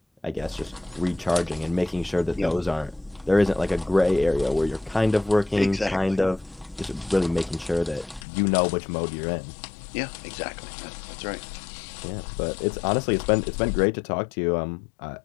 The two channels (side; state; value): right; drops out; at 8.2 s